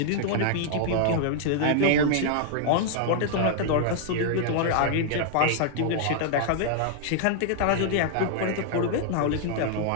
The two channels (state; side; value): different; both; correlation -0.01